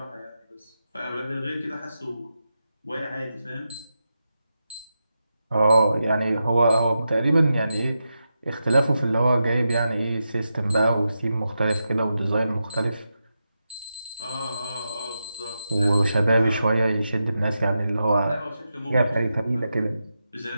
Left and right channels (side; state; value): both; inverted; correlation -0.89